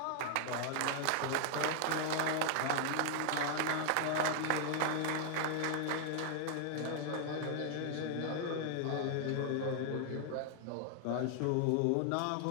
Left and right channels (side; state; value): both; different; correlation 0.00